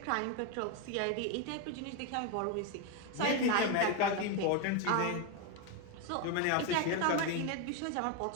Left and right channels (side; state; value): both; different; correlation 0.02